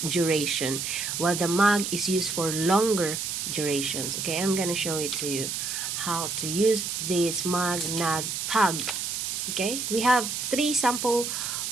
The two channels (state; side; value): noise; right; hiss, 3 dB below the sound